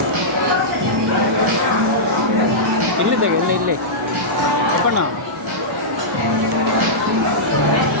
ಇಲ್ಲಿದ್ದಾಗ ಇಲ್ಲಿ ಅಪ್ಪಣ್ಣ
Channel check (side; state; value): both; normal; correlation -0.13